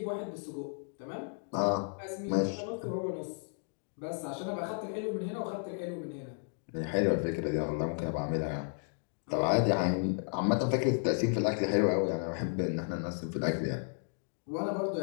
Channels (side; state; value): right; silent; 55 dB below the other